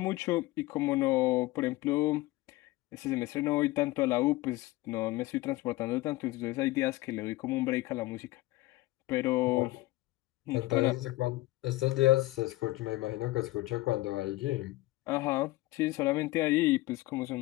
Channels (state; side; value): quieter; right; 18.9 dB